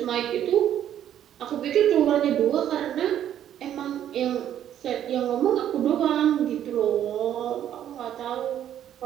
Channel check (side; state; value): left; quieter; 10.7 dB